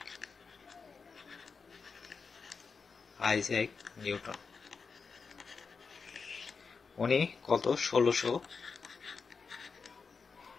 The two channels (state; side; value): quieter; right; 5.1 dB